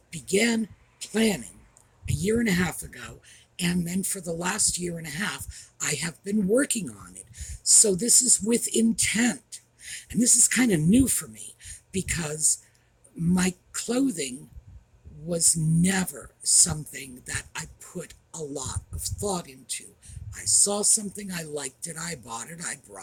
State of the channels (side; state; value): both; identical; correlation 1.00